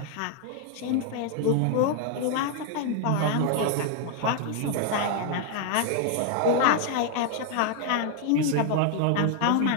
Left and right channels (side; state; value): both; different; correlation 0.00